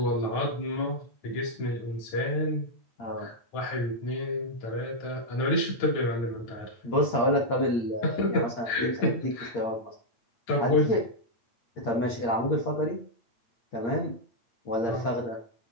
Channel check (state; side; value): late; right; 8.6 ms